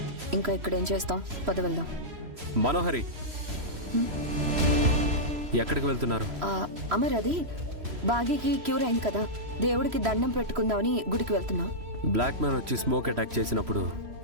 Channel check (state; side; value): late; left; 3.0 ms